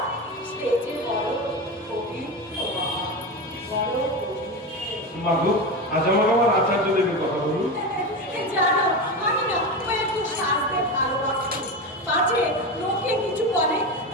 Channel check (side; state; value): both; normal; correlation 0.21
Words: সে যে বড় পবিত্র বাবা, বড় পবিত্র। মা গো, আজ আমার আচার্য দেবের কথা বলুন। জানো, আমি না ও একটু সাজতে ভালোবাসি। পাছে লোকে কিছু বলে,